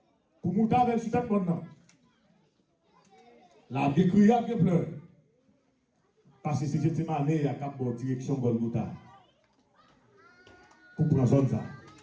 Pour monter avec le sujet maintenant. La bien crié, bien pleuré. Parce que c'est Gethsemane, il y a une bonne direction Golgotha. Pour prendre zone ça.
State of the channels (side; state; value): both; identical; correlation 1.00